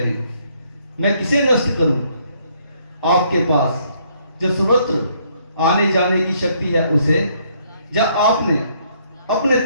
मैं किसे नष्ट करूं? आपके पास जो सर्वत्र आने जाने की शक्ति है उसे, या आपने अपने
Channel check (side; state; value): both; inverted; correlation -0.68